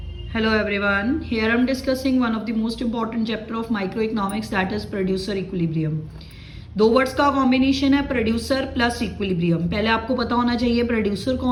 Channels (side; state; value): both; identical; correlation 1.00